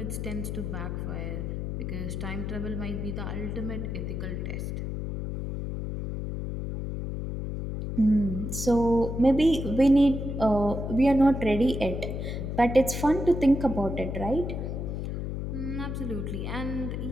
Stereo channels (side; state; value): left; noise; hum, 4 dB below the sound